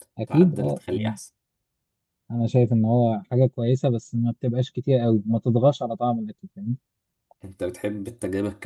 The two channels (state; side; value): identical; both; correlation 1.00